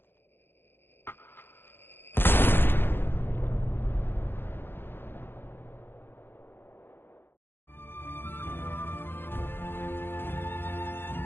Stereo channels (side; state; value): right; late; 0.10 ms